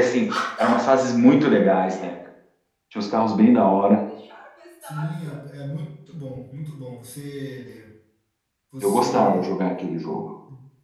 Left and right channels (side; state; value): both; identical; correlation 1.00